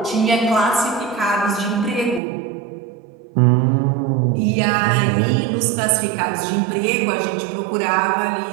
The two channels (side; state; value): left; drops out; at 2.2 s